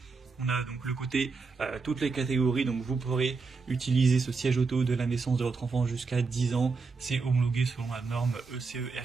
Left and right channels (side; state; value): left; quieter; 4.5 dB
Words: On a donc le côté toutes les catégories, donc vous pourrez utiliser ce siège auto de la naissance de votre enfant jusqu'à 10 ans. C'est homologué selon la norme ECE